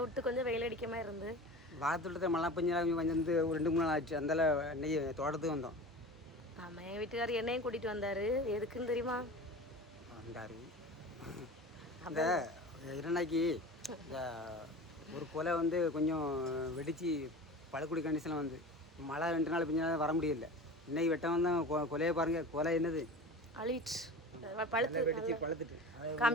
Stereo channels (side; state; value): both; normal; correlation 0.34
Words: விட்டு கொஞ்சம் வெயில் அடிக்க மாதிரி இருந்து பாலத்தோட்டத்தில் மழை பெஞ்சு வந்து ஒரு 2 3 நாள் ஆச்சு. அந்தால இன்னைக்கு தோட்டத்துக்கு வந்தோம். ஆமாம், என் வீட்டுக்காரர் என்னையும் கூட்டிகிட்டு வந்தார். எதுக்குன்னு தெரியுமா? வந்தார். அந்த இரண்டாக்கி இந்த ஒரு கொலை வந்து கொஞ்சம் வெடித்து பழக்குடி கண்டிஷனில் வந்து மழை 2 நாள் பெஞ்சாலும் வர முடியல. இன்னைக்கு வெட்டம் வந்தால் கொலையை பாருங்கள். கொலை என்னது அழிச்சு பழுத்து வெடிச்சு பழுத்துட்டு